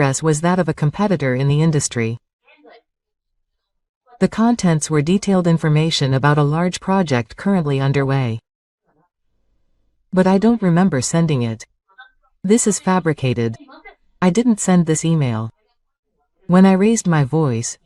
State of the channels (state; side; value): identical; both; correlation 1.00